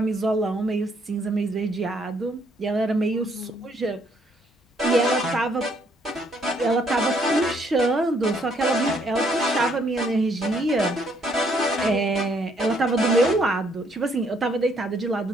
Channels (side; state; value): both; normal; correlation 0.69